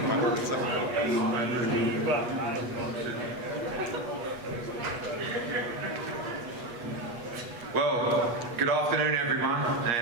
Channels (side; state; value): left; late; 8.2 ms